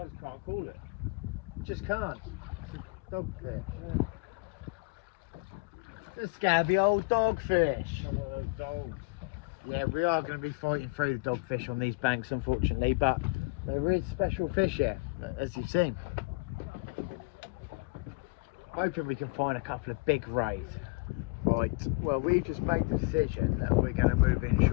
just can't call it. Just can't. It's a dogfish. Yeah. A scabby old dogfish. Dogs. Yeah, we are going to be fighting through the dogfish on these banks, unfortunately, but there is special fish here, as you've seen. Hoping we can find a couple of big rays. Right, well, we just made the decision that we're going to move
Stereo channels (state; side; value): quieter; right; 27.7 dB